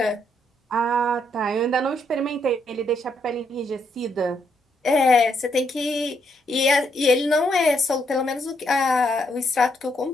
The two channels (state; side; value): normal; both; correlation 0.75